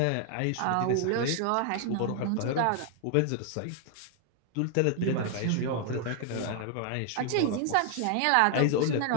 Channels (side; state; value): both; different; correlation 0.00